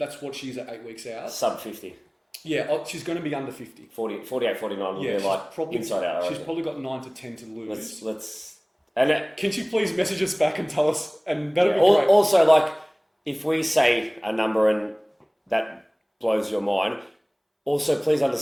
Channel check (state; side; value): identical; both; correlation 1.00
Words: what she's at 8 weeks out. Sub 50. Yeah, she's going to be under 50. 48, 49 will be like probably, inside out. She's probably got 9 to 10 to lose. Can she please message us back and tell us? And that'll be great. Also, like, if we say a number and that blows your mind, also please